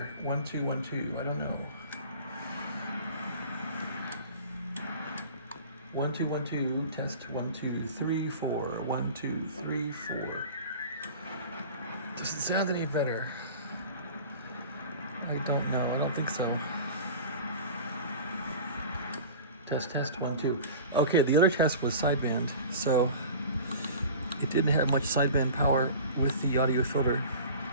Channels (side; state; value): both; inverted; correlation -0.38